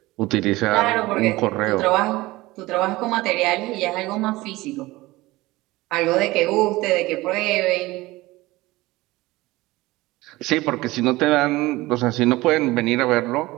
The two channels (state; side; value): quieter; left; 19.7 dB